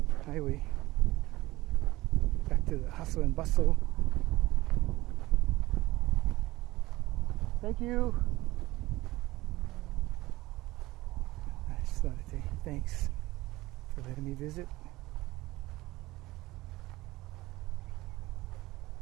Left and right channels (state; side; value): quieter; left; 18.8 dB